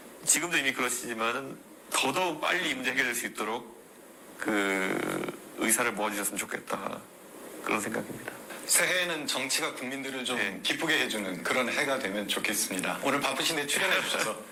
지금도 이미 그러시지만은 더더욱 빨리 이 문제 해결될 수 있도록 그 의사를 모아주셨으면 좋겠다. 그런 생각입니다. 새해에는 정치가 국민들을 좀 기쁘게 해주는 그런 해가 되면 좋겠습니다. 오늘 바쁘신데 출연해 주셔서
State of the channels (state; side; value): identical; both; correlation 1.00